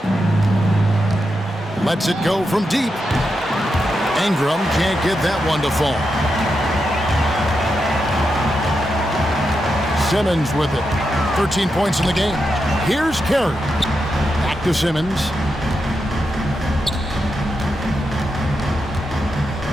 Lets it go from deep. Ingram can't get that one to fall. Simmons with it. 13 points in the game. Here's Carey. Back to Simmons.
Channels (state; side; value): normal; both; correlation 0.86